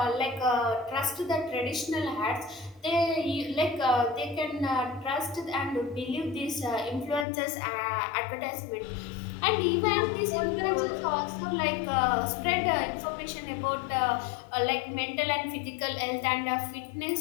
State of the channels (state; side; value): drops out; right; at 7.2 s